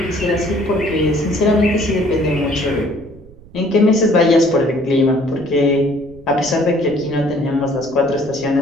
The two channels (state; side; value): noise; right; rumble, 22 dB below the sound